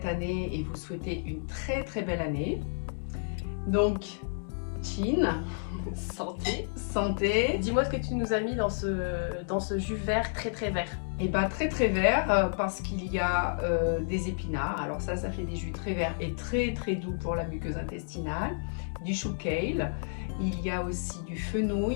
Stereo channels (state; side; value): silent; right; digital silence